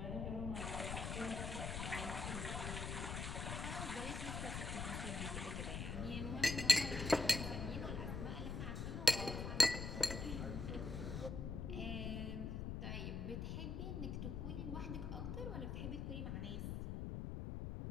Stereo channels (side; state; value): left; noise; rumble, 3 dB below the sound